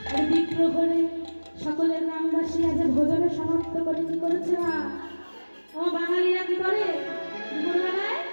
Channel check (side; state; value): both; inverted; correlation -1.00